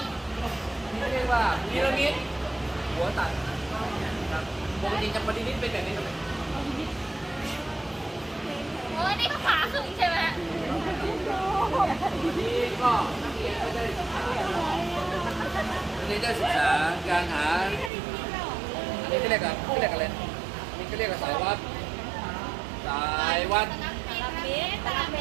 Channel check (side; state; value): left; drops out; at 17.9 s